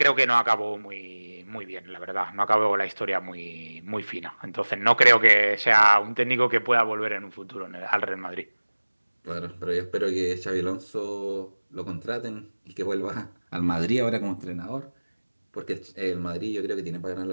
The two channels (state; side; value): inverted; both; correlation -1.00